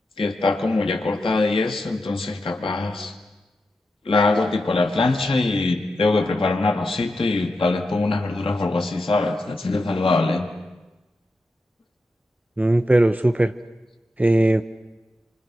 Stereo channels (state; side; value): normal; both; correlation 0.89